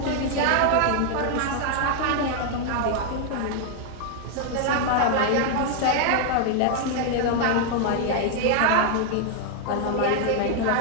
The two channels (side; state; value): both; different; correlation 0.00